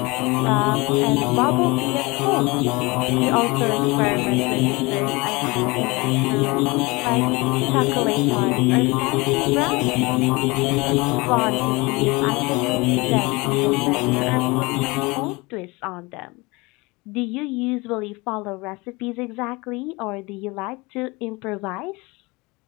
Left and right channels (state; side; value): quieter; right; 24.8 dB